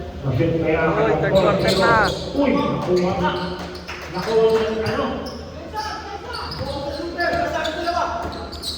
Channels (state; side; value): identical; both; correlation 1.00